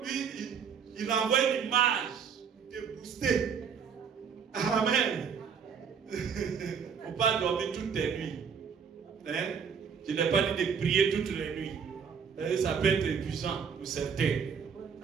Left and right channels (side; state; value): left; quieter; 6.7 dB